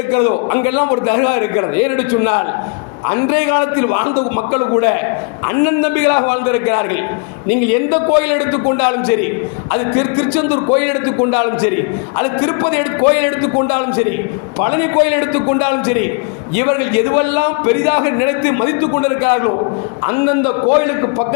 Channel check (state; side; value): quieter; right; 36.1 dB